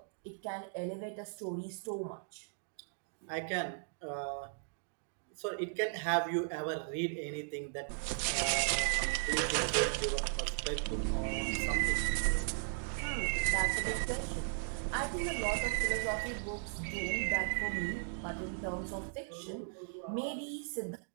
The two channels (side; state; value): left; silent; digital silence